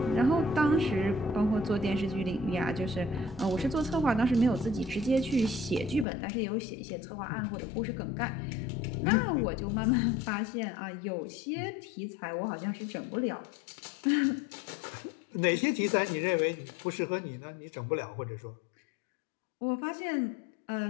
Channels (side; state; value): right; drops out; at 6.1 s